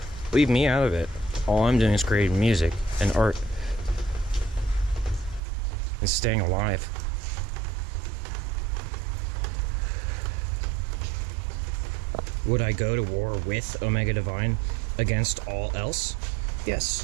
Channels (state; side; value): drops out; left; at 5.4 s